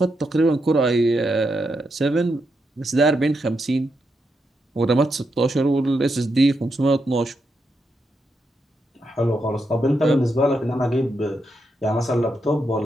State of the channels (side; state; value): both; normal; correlation 0.83